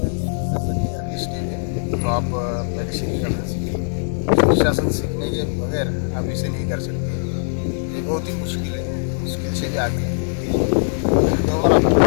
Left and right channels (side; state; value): right; silent; digital silence